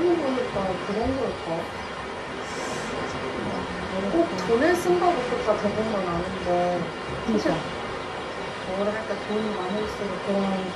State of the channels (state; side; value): identical; both; correlation 1.00